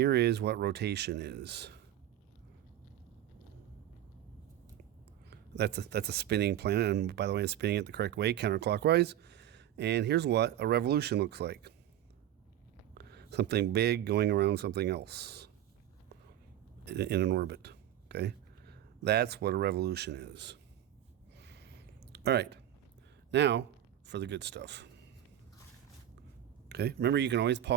is what rotation is. That's a spinning planet, and by the way, it's spinning it the correct way, counterclockwise. And here's what a revolution looks like. Something big going around something else in an orbit. Okay? That's what a revolution is. All right. Now for the good stuff. Okay? Remember, you can always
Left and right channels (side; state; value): left; quieter; 11.7 dB